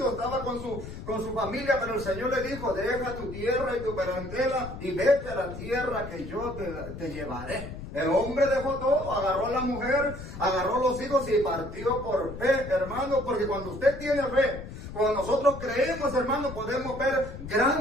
estaba con su familia, pero el Señor le dijo, deja tu tierra y tu parentela y vete a la tierra que yo te llevaré. El hombre dejó todo, agarró a la mujer, agarró a los hijos y partió por fe, hermano, porque cuando usted tiene fe, cuando nosotros creemos, hermano, podemos ver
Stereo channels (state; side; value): noise; left; rumble, 11 dB below the sound